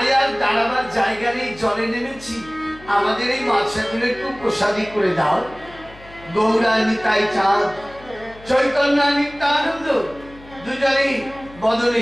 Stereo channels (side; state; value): left; noise; hum, 21 dB below the sound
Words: আর দাঁড়াবার জায়গা নেই, জলে নেমেছি, আমাদের এই মাছগুলো একটু প্রসাদী করে দাও। গৌরা নিতাই চাঁদ, চৈতন্য নিত্যানন্দ দুজনেই বদলে